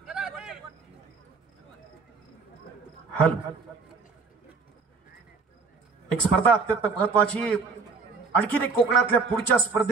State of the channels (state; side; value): quieter; left; 4.7 dB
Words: एक स्पर्धा अत्यंत महत्वाची. आणखीन एक कोकणातल्या पुढच्या